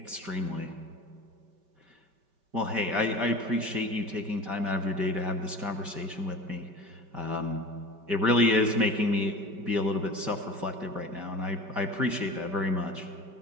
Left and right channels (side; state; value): left; late; 5.2 ms